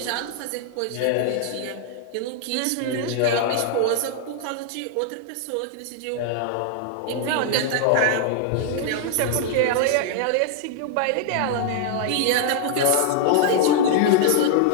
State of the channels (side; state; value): both; different; correlation 0.00